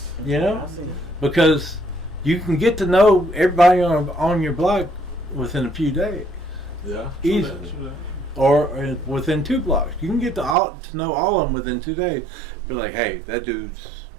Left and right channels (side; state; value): left; drops out; at 10.6 s